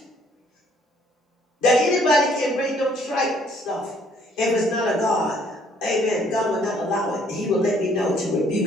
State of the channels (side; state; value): both; normal; correlation 0.63